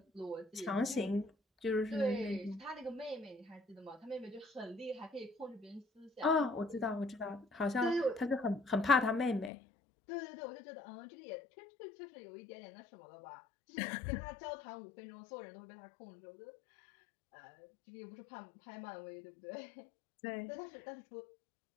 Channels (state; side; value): drops out; right; at 9.5 s